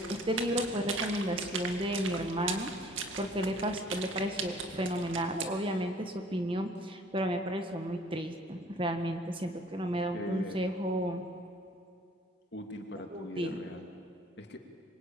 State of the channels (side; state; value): both; normal; correlation 0.55